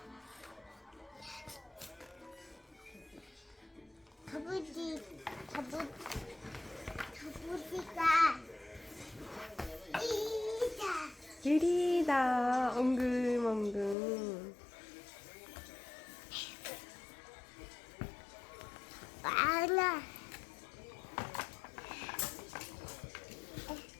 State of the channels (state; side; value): drops out; right; at 14.0 s